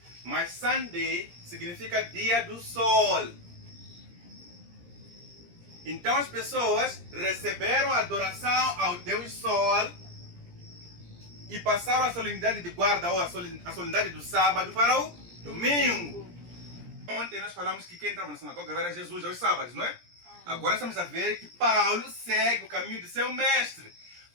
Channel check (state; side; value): late; left; 17 ms